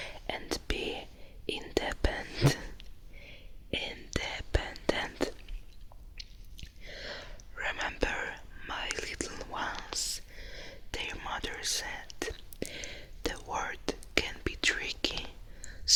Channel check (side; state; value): both; identical; correlation 1.00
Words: and be independent. Remember, my little ones, their mother said, the world can be tricky,